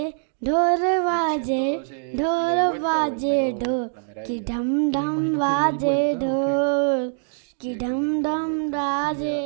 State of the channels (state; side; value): silent; left; digital silence